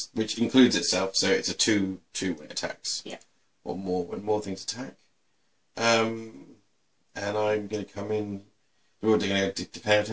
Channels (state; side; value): identical; both; correlation 1.00